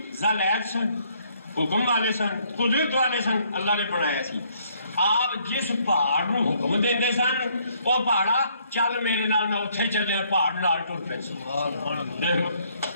ذل عید سن، حکم والے سن، قدرت والے سن، اللہ نے بنایا سی۔ آپ جس پہاڑ نو حکم دیندے سن وہ پہاڑا چل میرے نال میں اتھے چلے، پہاڑ نال ٹر پے سن۔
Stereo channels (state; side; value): inverted; both; correlation -0.67